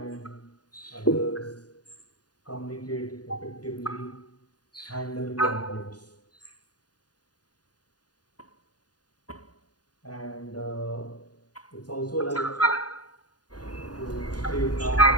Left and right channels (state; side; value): late; right; 0.69 ms